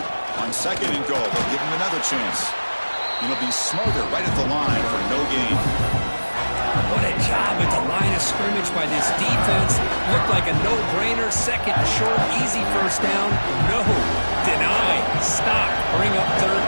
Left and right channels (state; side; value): inverted; both; correlation -1.00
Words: On second and goal, they'll give him another chance. It'll be Smoger right at the line for no gain. What a job at the line of scrimmage by this defense. Looked like a no-brainer. Second and short, easy first down. No, deny, stop, bring up third